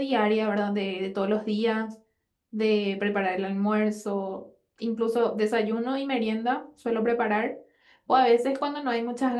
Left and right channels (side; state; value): both; identical; correlation 1.00